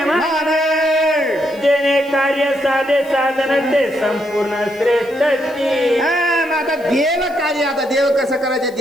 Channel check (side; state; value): left; noise; hiss, 26 dB below the sound